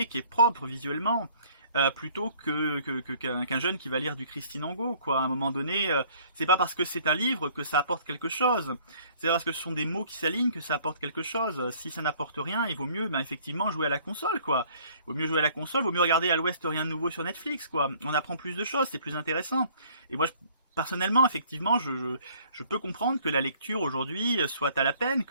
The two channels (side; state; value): both; inverted; correlation -0.57